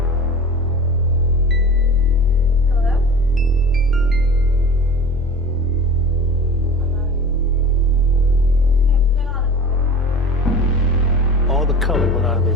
Hello? All the color went out of their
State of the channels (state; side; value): normal; both; correlation 0.37